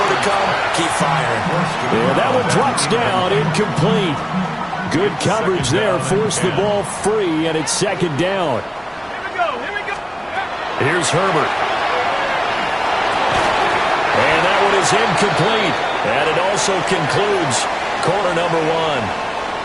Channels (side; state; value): both; identical; correlation 1.00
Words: to come. Keep firing. And that one drops down, incomplete. Good coverage there, forced the ball free, and it's second down. Here's Herbert. And that one is incomplete. And it also concludes quarter number one.